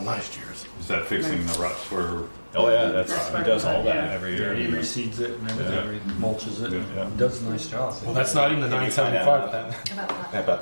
last year's. Is that fixing the ruts where? oh yeah, that's, That's he part does of it, all that yeah. every Yeah, year. he reseeds it and everything, he mulches it, Yeah. and does a nice job. Well, that's not even the Can you find 975 then. About How that. about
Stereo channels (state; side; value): inverted; both; correlation -1.00